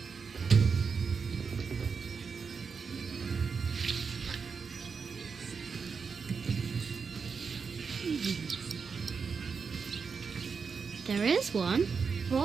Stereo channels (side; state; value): left; quieter; 5.5 dB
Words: There is one.